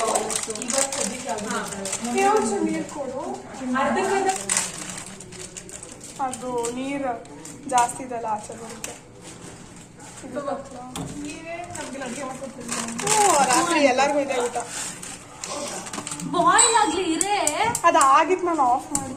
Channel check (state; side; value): identical; both; correlation 1.00